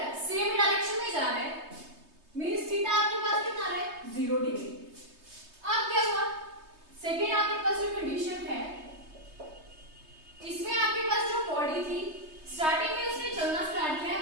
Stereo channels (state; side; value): late; left; 3.2 ms